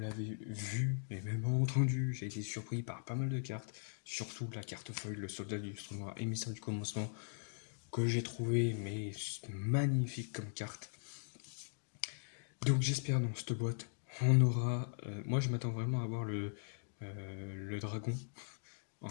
vu et même entendu, j'ai été surpris par pas mal de cartes, surtout la carte feuille, le soldat du noir, émissaire du commencement, que j'ai trouvé mais magnifique comme carte. Donc j'espère dans cette boîte, on aura... moi je m'attends vraiment à avoir le dragon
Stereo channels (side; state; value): right; silent; digital silence